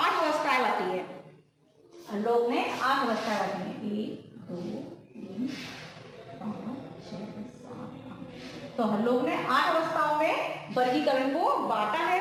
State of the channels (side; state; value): both; identical; correlation 1.00